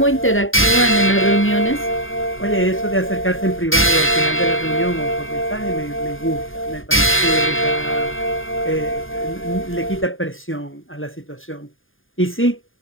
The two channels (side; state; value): right; late; 0.59 ms